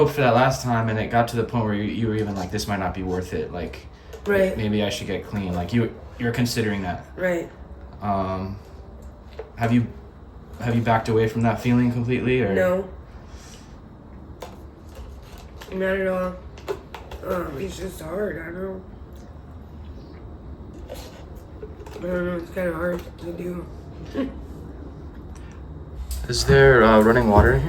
for that last time, and it got to the point where you were even like, this might not be worth it. Like, Right. maybe I should get clean. Like, you're considering that. Right. Have you backed away from that feeling completely, or? No. Not at all. It's just hard. I don't know. It's kind of hard to do. Is there running water in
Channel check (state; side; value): identical; both; correlation 1.00